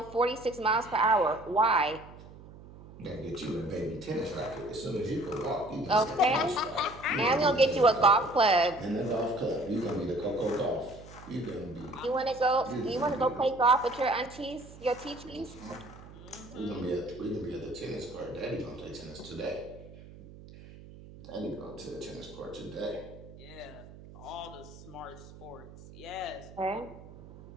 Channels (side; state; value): right; noise; hum, 18 dB below the sound